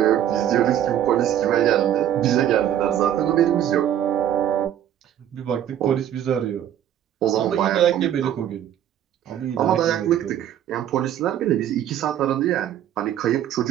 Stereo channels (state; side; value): quieter; left; 10.8 dB